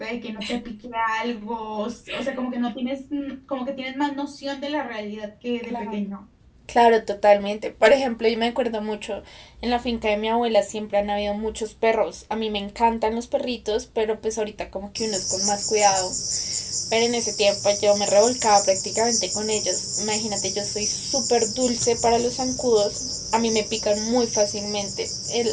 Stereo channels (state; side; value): identical; both; correlation 1.00